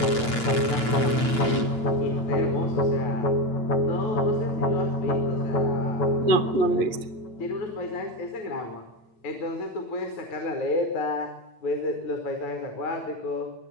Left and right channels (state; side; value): late; right; 8.9 ms